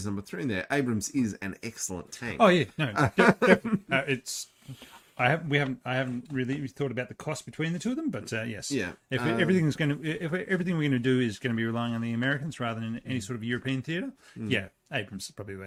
number 3 in there. Abrams is an excellent tank. Oh yeah, no, definitely. I haven't really thought about the cost between the two of them, but yes, yeah. If everything we're going to do is going to be relying on the Americans rather than any sort of European theatre, yeah, Abrams is probably the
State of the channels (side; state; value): both; identical; correlation 1.00